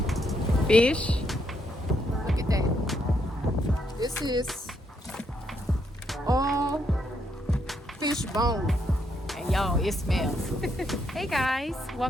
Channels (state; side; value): normal; both; correlation 0.76